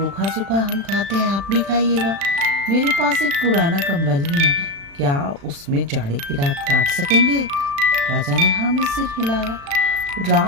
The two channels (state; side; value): late; left; 36 ms